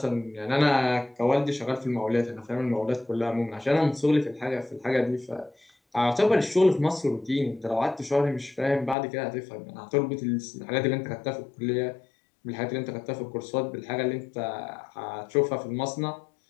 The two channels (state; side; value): drops out; right; at 9.0 s